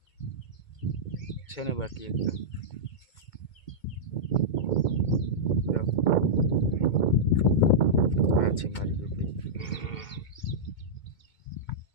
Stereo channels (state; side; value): late; right; 2.2 ms